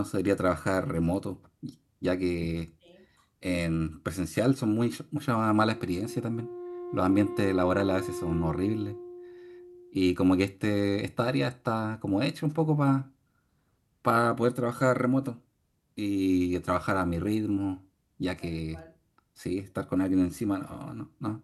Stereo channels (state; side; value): identical; both; correlation 1.00